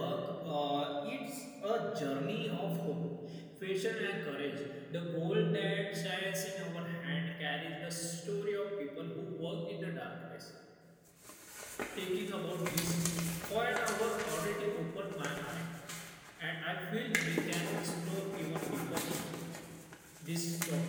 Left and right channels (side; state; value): both; identical; correlation 1.00